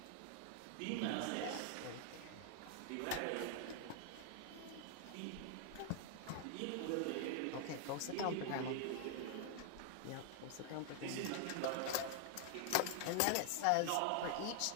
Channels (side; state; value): both; different; correlation 0.00